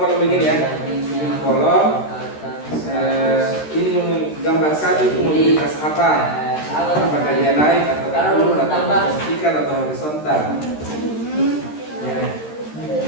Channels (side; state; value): right; late; 13 ms